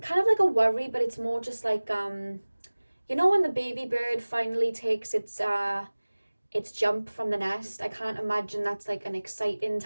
kind of like a worry, but it's more just like you know, when the baby bird finally takes its jump from the nest. I can't imagine that's like an exciting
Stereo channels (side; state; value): both; inverted; correlation -1.00